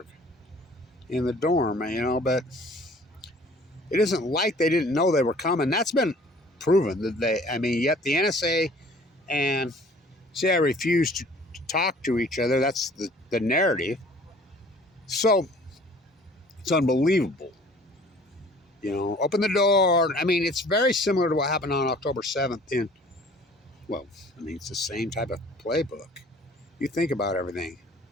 in the dorm, but it isn't like they didn't know they were coming. That's been proven yet the NSA and CIA refused to talk to each other. That's the narrative. So it's unbelievable. Open the door. I mean, it's very similar to what happened on October 7th it's the same type of playbook. You think about everything.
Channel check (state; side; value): normal; both; correlation 0.51